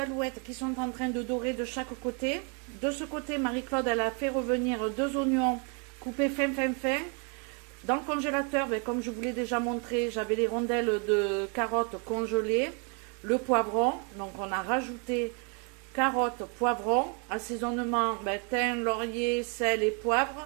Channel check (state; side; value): quieter; left; 36.7 dB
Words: qui sont en train de dorer de chaque côté. De ce côté, Marie-Claude, elle a fait revenir 2 oignons coupés fin. Dans le congélateur, comme je vous l'ai déjà montré, j'avais les rondelles de carottes congelées, le poivron. Donc on a rajouté carottes, poivron, assaisonnement, thym, laurier, sel et poivre.